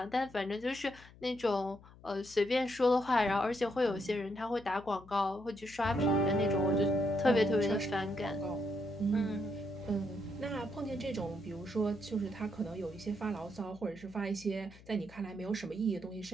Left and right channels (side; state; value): left; noise; hum, 22 dB below the sound